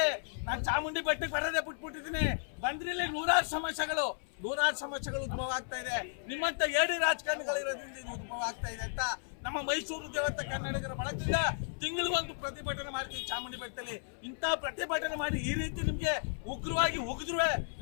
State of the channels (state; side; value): silent; right; 55 dB below the other